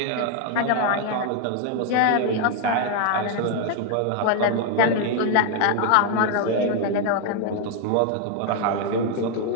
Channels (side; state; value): both; different; correlation 0.01